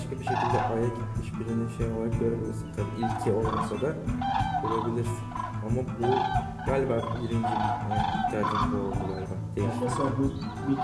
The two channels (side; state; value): both; identical; correlation 1.00